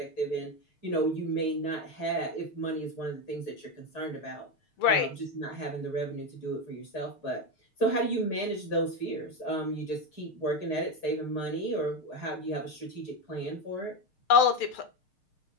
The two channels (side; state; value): right; late; 6.6 ms